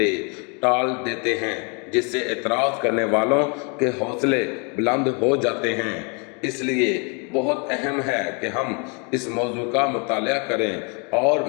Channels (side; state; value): right; quieter; 34.4 dB